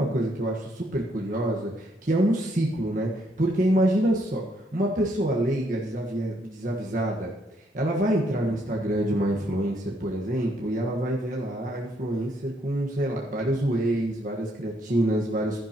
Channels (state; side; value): normal; both; correlation 0.72